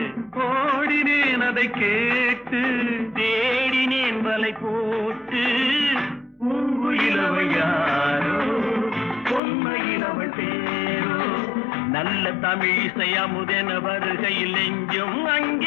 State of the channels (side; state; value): right; drops out; at 9.4 s